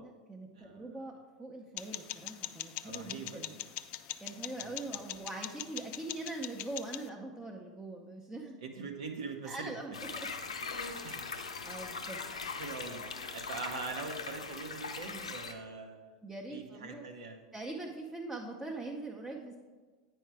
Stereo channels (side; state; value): both; normal; correlation 0.14